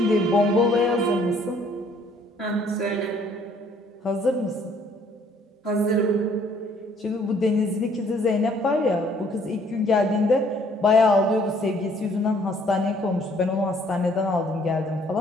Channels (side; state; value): both; normal; correlation 0.62